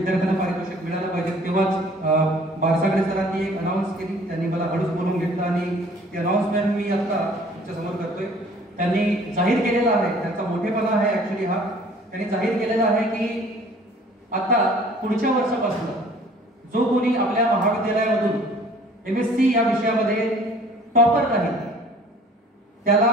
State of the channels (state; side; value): normal; both; correlation 0.52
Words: पारितोषिक मिळालं पाहिजे, तेव्हाच बारसागडे सरांनी एक अनाउन्स केली। त्यांनी मला हळूच बोलून घेतलं आणि ती अनाउन्समेंट मी आता समोर करतोय। त्यांनी जाहीर केलेला आहे, त्यांचा मोठेपणा आहे ऍक्च्युअली हा, त्यांनी जाहीर केलेला आहे की आता पुढच्या वर्षापासून जो कोणी आपल्या महाविद्यालयामधून MSc या विषयामध्ये टॉपर राहील त्याला